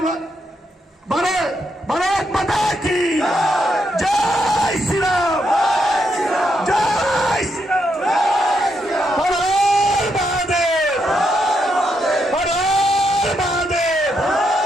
ভারত, ভারত মাতা কি জয় শ্রীরাম, জয় শ্রীরাম, হর মহাদেব, হর মহাদেব।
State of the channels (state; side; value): normal; both; correlation 0.80